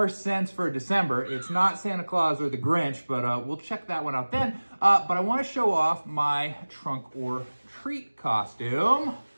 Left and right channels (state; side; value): inverted; both; correlation -1.00